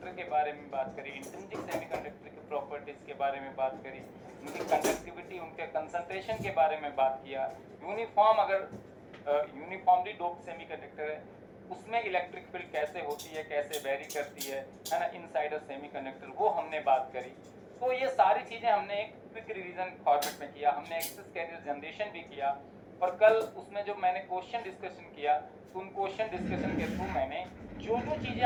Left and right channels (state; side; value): identical; both; correlation 1.00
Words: के बारे में बात करी, इंट्रिंसिक सेमीकंडक्टर की प्रॉपर्टीज के बारे में बात करी, उनकी कंडक्टिविटी, उनके कंसंट्रेशन के बारे में बात किया। यूनिफॉर्म, अगर यूनिफॉर्मली डोप्ड सेमीकंडक्टर है उसमें इलेक्ट्रिक फील्ड कैसे होती है, कैसे वेरी करती है ना, इनसाइड अ सेमीकंडक्टर, वो हमने बात करी। तो ये सारी चीजें हमने एक क्विक रिवीजन फॉर्मेट में किया। हमने एक्सेस कैरियर जनरेशन भी किया, और कल उसमें जो मैंने क्वेश्चन डिस्कशन किया, तो उन क्वेश्चन डिस्कशन के थ्रू मैंने जो जो चीज़ें